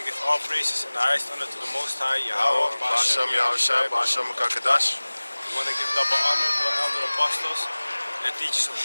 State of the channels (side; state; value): both; inverted; correlation -1.00